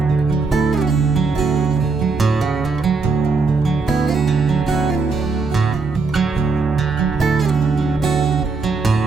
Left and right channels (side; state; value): left; quieter; 4.2 dB